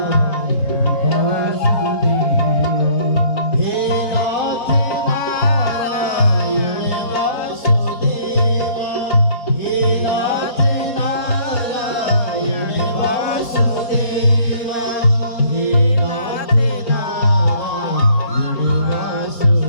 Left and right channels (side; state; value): right; late; 4.2 ms